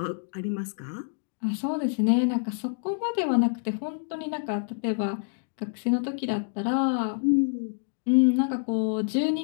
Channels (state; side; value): silent; right; digital silence